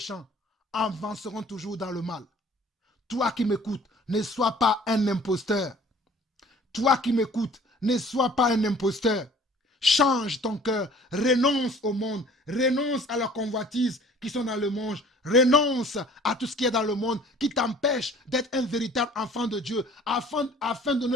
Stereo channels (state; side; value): normal; both; correlation 0.51